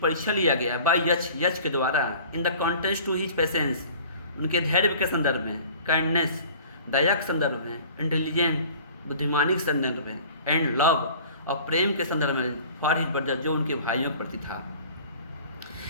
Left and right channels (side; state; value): both; inverted; correlation -0.46